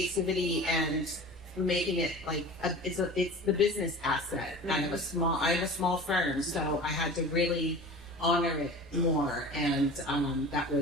and making it like it's the business asset. I have a small firm, so I had to really honor it more, and that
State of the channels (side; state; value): both; normal; correlation 0.38